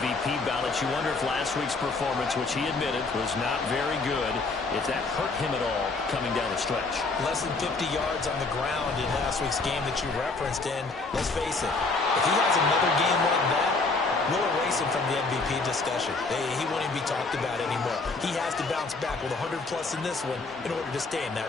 ballots. You wonder if last week's performance, which he admitted was not very good, if that hurt him at all coming down the stretch. Less than 50 yards on the ground in last week's game that you referenced. And let's face it, if he has another game like that, we'll erase him from the MVP discussion. He won't even be talked about anymore. He has to bounce back with 100-plus in this one in order to stay in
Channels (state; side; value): quieter; right; 3.8 dB